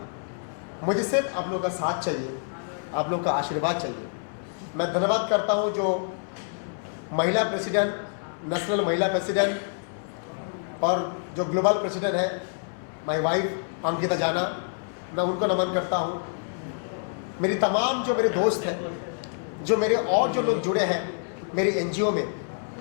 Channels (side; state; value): right; silent; digital silence